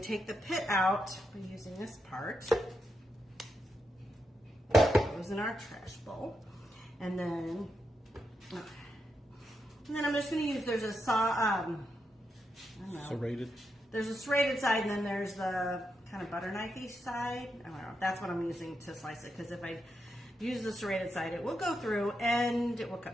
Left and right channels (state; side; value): normal; both; correlation 0.84